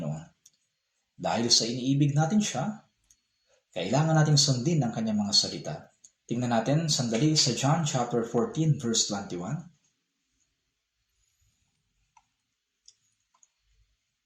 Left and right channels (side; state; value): both; identical; correlation 1.00